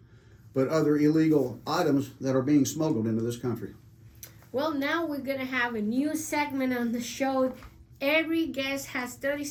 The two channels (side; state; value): both; identical; correlation 1.00